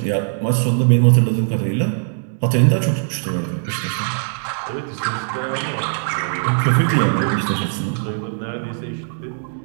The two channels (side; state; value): left; silent; digital silence